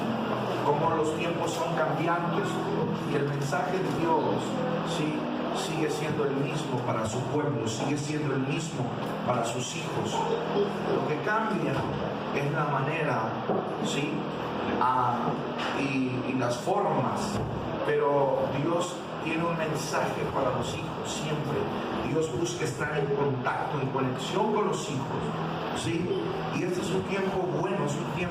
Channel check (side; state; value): both; identical; correlation 1.00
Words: cómo los tiempos son cambiantes y el mensaje de Dios sí sigue siendo el mismo para su pueblo, sigue siendo el mismo para sus hijos. Lo que cambia es la manera, sí, y las formas, pero Dios tiene un mensaje para los hijos siempre. Dios busca estar en contacto, en conexión con los hijos, ¿sí? Y este es un tiempo bueno, es un